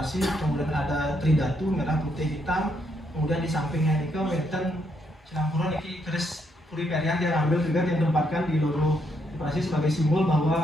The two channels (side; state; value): both; normal; correlation 0.75